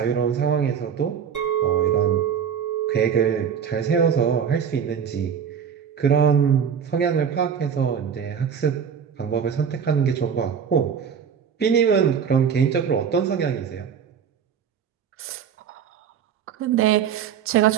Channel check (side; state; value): left; quieter; 7.5 dB